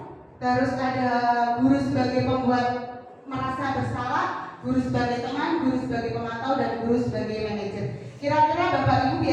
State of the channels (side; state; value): both; identical; correlation 1.00